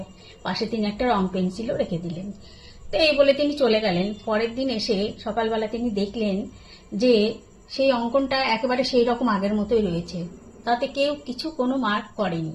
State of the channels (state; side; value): identical; both; correlation 1.00